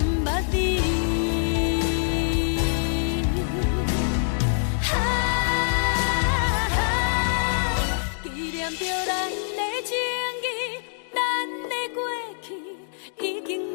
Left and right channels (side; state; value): right; silent; digital silence